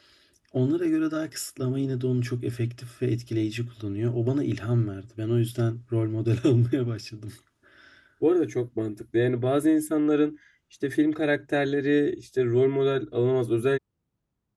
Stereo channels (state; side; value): identical; both; correlation 1.00